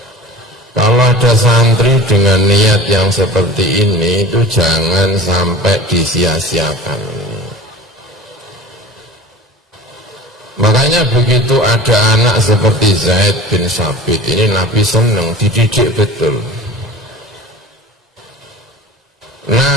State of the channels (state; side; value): normal; both; correlation 0.38